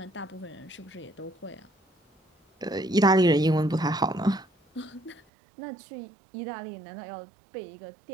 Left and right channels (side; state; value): left; drops out; at 5.2 s